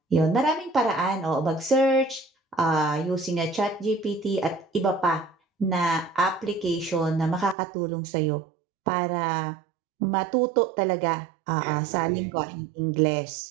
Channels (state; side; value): drops out; left; at 7.6 s